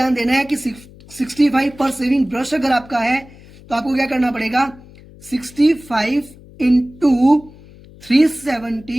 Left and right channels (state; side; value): noise; left; hum, 22 dB below the sound